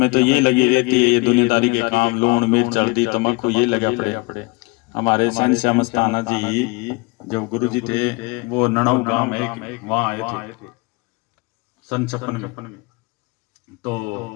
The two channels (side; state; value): right; quieter; 26.8 dB